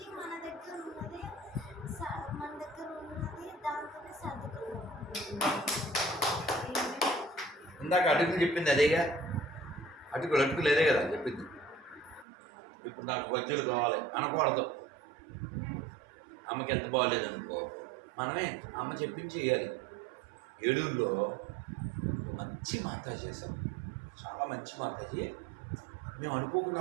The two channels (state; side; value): drops out; left; at 12.2 s